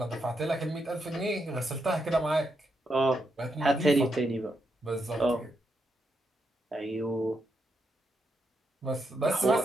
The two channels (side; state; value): both; normal; correlation 0.82